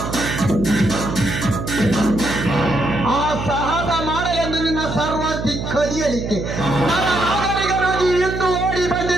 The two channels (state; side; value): noise; right; hum, 5 dB below the sound